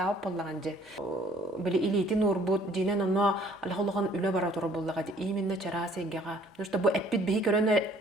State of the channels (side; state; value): both; normal; correlation 0.58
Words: боллаган же. Биле илитин урбут динен оны алхологан үлө бара тура боллагади. Именно чарасегега. Ну что бу эппит бихи көрөнө